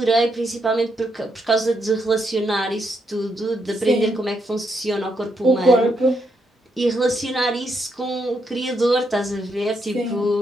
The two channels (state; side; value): normal; both; correlation 0.79